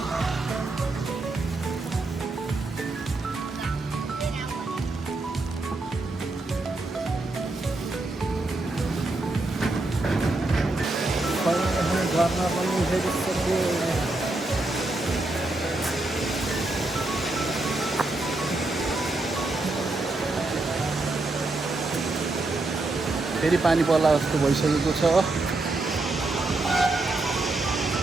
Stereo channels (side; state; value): left; quieter; 3.0 dB